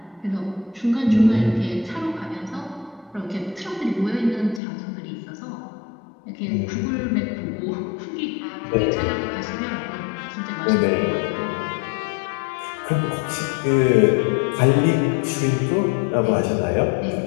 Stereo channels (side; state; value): right; drops out; at 4.6 s